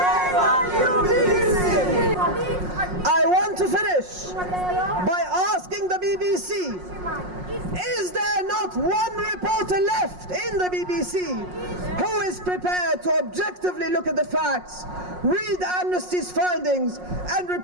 on you, BBC! I want to finish by asking the BBC, is there not one reporter left in the BBC who is prepared to objectively look at the facts, read Amnesty's findings, and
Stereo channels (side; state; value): left; late; 5.5 ms